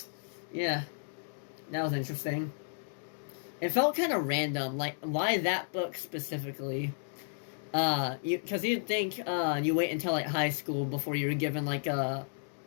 yeah. That was interesting. It felt kind of random, like, why that book specifically? Because you'd think, you wait until, like, high school before you were given, an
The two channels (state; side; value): silent; right; digital silence